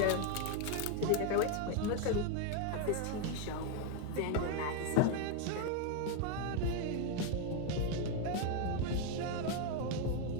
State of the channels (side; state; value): both; different; correlation 0.01